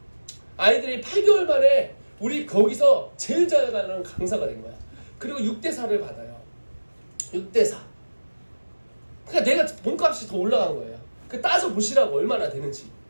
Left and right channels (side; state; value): both; inverted; correlation -1.00